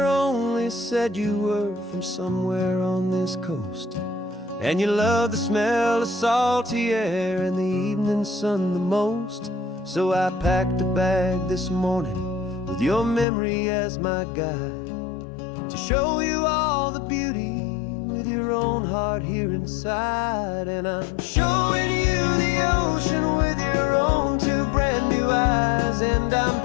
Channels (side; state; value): right; drops out; at 13.2 s